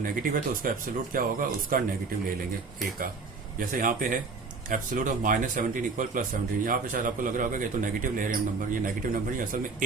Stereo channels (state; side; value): quieter; left; 4.3 dB